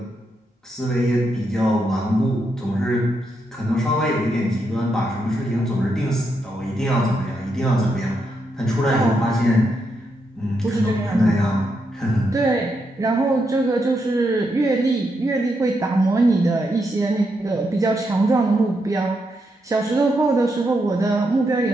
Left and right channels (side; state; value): both; normal; correlation 0.81